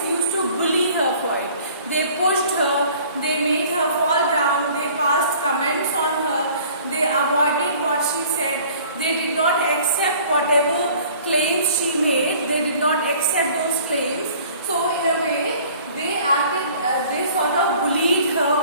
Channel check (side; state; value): both; inverted; correlation -0.51